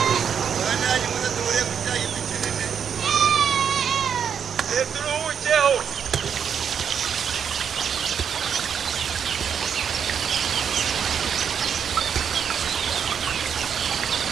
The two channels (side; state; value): left; quieter; 7.6 dB